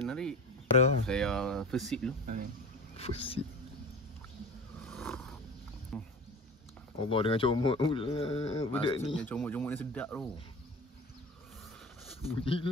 narik. Ada. Saya first sip dulu. Fusi. Allah dengan comot pula budak ni. Maksudnya comot-comot ni sedap tu.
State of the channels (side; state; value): both; normal; correlation 0.34